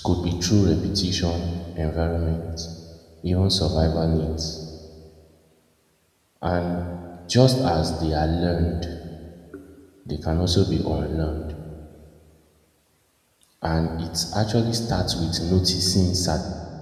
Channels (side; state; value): both; identical; correlation 1.00